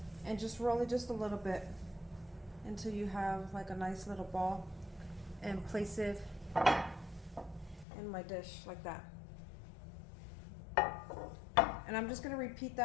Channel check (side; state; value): right; drops out; at 7.9 s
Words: and just roll it just a little bit until you have like a nice little ball, and place it in my dish like that. And I'm just gonna repeat